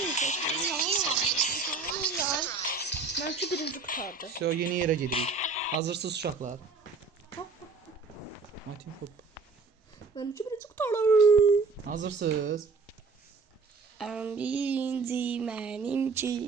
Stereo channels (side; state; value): left; quieter; 4.4 dB